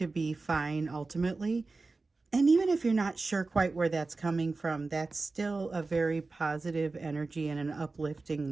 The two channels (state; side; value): quieter; left; 3.7 dB